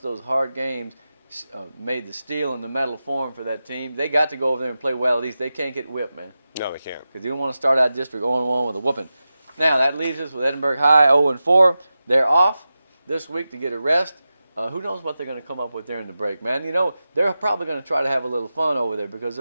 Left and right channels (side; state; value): both; inverted; correlation -0.93